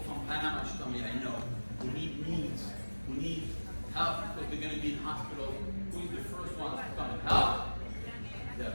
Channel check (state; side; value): inverted; both; correlation -1.00